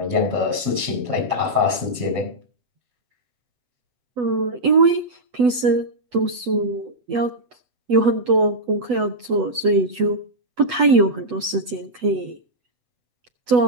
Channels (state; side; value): late; left; 8.1 ms